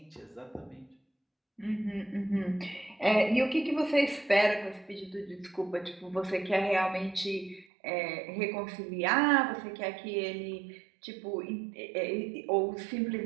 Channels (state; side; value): drops out; left; at 7.7 s